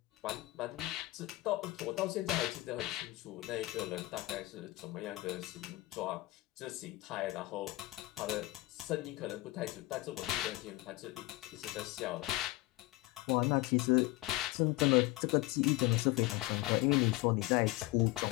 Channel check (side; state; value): right; quieter; 19.9 dB